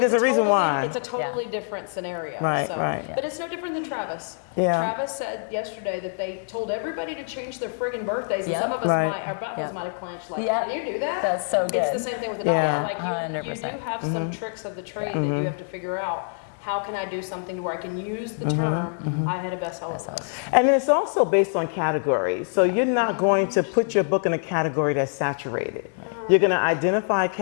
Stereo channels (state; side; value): silent; right; 62 dB below the other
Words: there's it's a reason totally, why. It's a totally different scenario. Right, so, right. Yeah. But it's no different than Travis. Yeah. Travis said yesterday that they told everybody to change their friggin' birthdays. And Yep. some of us Right. our buttholes Yep. might have clenched. Like, Yep. can you do that? That's so It's good. the same thing with the dollar. Yeah, Like you 100%. do have some tricks of the trade that you have to figure out. How can I do something to where I can use the term, I had a bestseller list. And it's also based on category. So you're not going to put your book in a category that's saturated. You're going to identify a